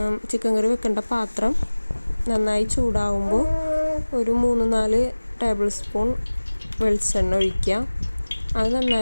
ചിക്കൻ കറി വെക്കേണ്ട പാത്രം നന്നായി ചൂടാവുമ്പോൾ ഒരു 3-4 ടേബിൾ സ്പൂൺ വെളിച്ചെണ്ണ ഒഴിക്കുക. അത്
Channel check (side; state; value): both; inverted; correlation -1.00